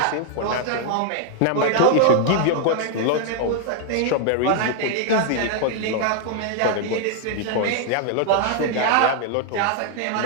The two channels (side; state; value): both; different; correlation 0.00